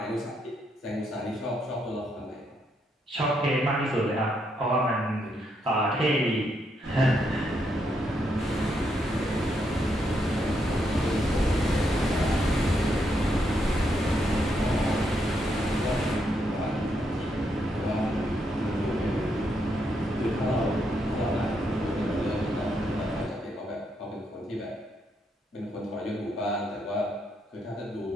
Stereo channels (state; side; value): normal; both; correlation 0.78